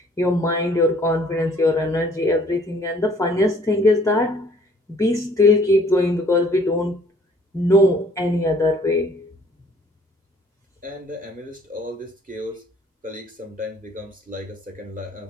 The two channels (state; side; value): normal; both; correlation 0.58